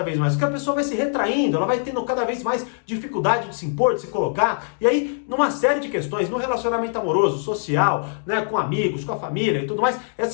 vez mais, porque a pessoa vai se retraindo, ela vai tendo cada vez mais dificuldade de se impor, de se colocar, e aí, numa série de questões, no relacionamento amoroso, social, né, com amigos, com a família e tudo mais,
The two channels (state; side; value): silent; right; digital silence